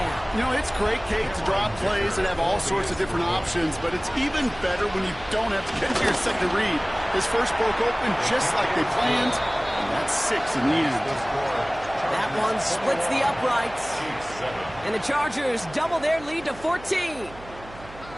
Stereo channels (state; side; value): noise; right; hum, 18 dB below the sound